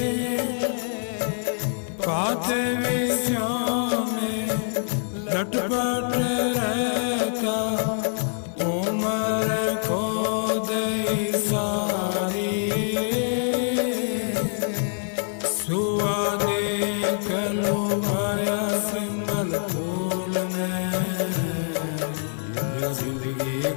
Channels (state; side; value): silent; right; 60 dB below the other